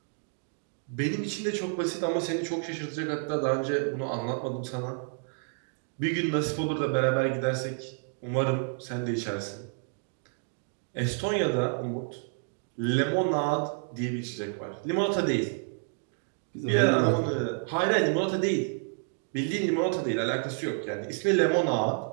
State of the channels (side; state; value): left; silent; 58 dB below the other